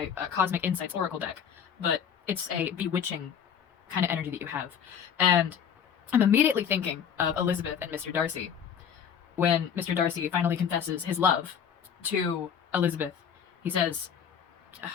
Cosmic Insights Oracle deck, but it's a bewitching kind of energy that you have, and I'm immediately thinking of Elizabeth and Mr. Darcy. When Mr. Darcy finally confesses his love to Elizabeth, he says,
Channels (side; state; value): right; quieter; 7.9 dB